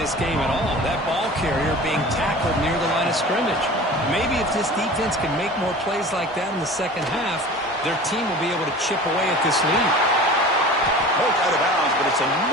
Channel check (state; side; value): normal; both; correlation 0.39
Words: game at all. That ball carrier being tackled near the line of scrimmage. Maybe if this defense can make more plays like that in the second half, their team will be able to chip away at this lead. Poked out of bounds, but it's